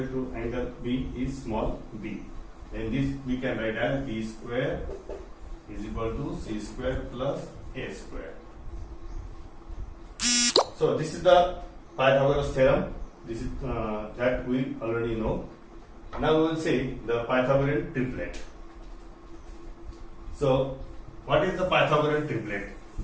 to angle B is small b, then this we can write as B square is equal to C square plus A square. So this is the Pythagoras theorem. This is that we already know. Now we will see the Pythagorean triplet. So, what is the Pythagorean triplet?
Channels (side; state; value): both; identical; correlation 1.00